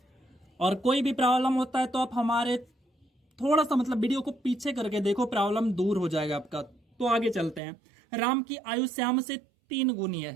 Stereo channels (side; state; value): left; drops out; at 7.6 s